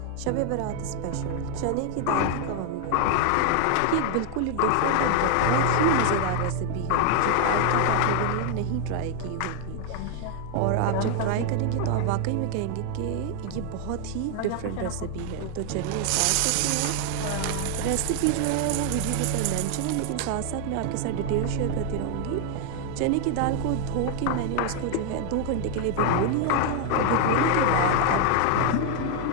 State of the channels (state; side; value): different; both; correlation 0.00